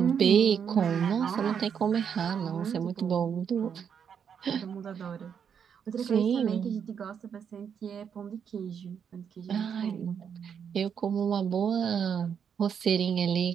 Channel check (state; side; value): quieter; left; 7.5 dB